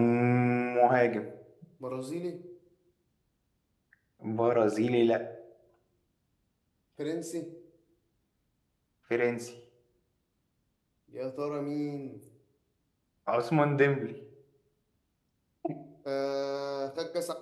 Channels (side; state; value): both; identical; correlation 1.00